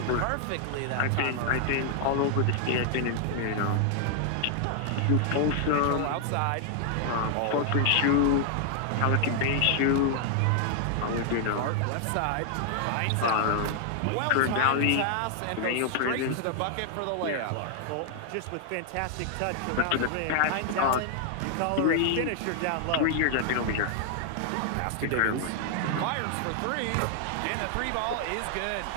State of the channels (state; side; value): different; both; correlation 0.00